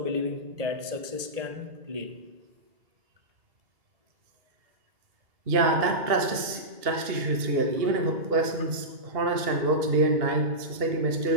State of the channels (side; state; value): left; late; 2.7 ms